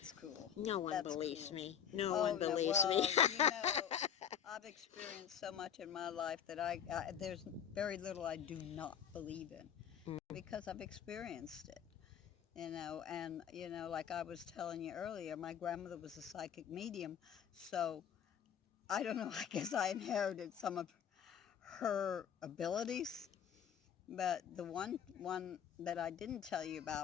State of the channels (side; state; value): right; quieter; 8.5 dB